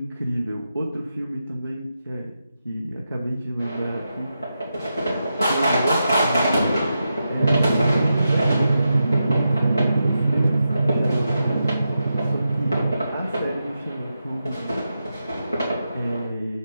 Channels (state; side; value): inverted; both; correlation -0.88